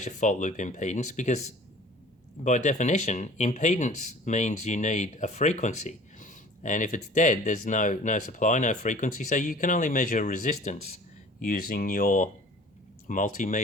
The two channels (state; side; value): normal; both; correlation 0.47